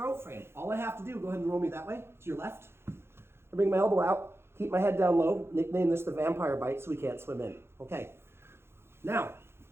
frame. All I have to do, go ahead and roll me that way, to your left. I bring my elbow out, keep my head down low, nickname this the vampire bite so he can't swim in. Okay, now,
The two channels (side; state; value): left; late; 0.12 ms